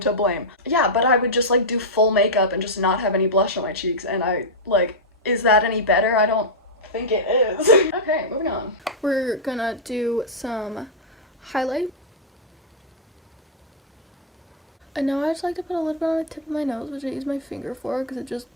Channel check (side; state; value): both; normal; correlation -0.06